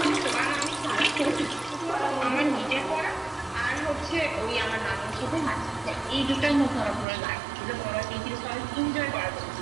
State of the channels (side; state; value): left; drops out; at 7.1 s